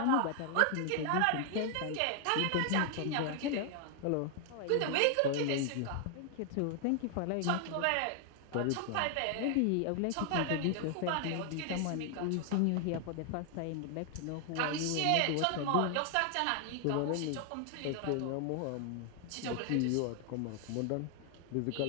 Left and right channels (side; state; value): both; different; correlation 0.00